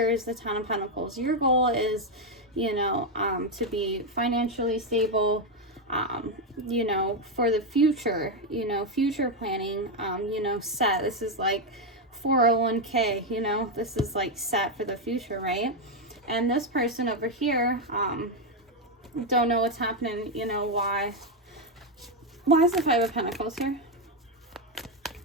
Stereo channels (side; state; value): both; normal; correlation 0.05